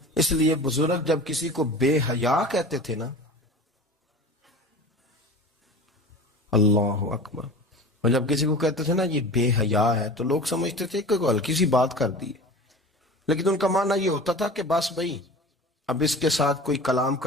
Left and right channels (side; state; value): both; normal; correlation 0.36